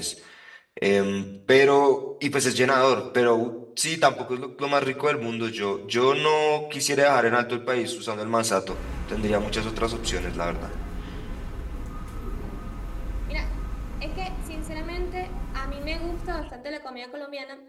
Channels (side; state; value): both; identical; correlation 1.00